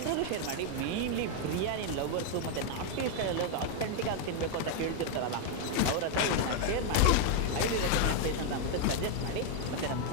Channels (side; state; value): both; different; correlation 0.00